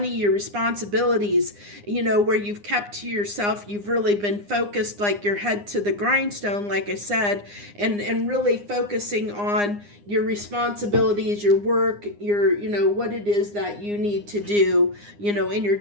your responsibilities, where you've kept to yourself. You've really been focused, like your head to the grindstone, like I said, and really focusing on your responsibilities, your work, your, what it is that you need to do, in your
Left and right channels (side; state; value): left; late; 9.8 ms